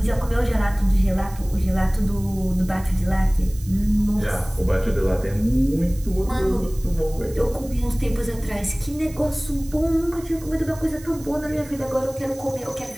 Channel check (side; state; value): right; noise; hiss, 20 dB below the sound